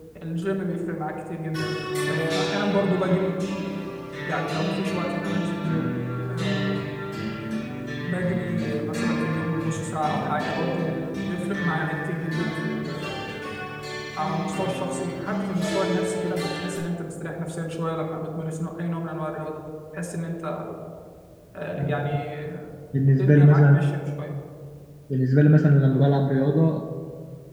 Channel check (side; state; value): both; identical; correlation 1.00